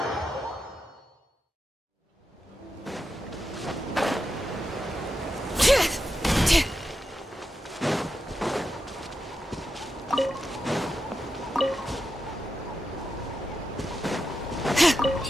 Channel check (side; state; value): both; normal; correlation 0.88